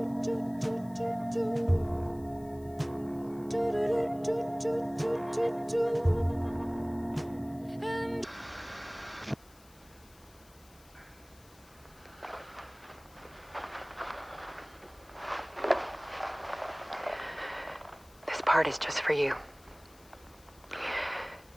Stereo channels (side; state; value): left; noise; hiss, 26 dB below the sound